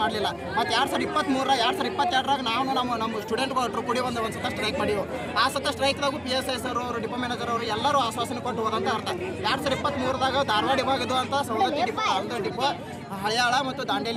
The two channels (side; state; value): both; identical; correlation 1.00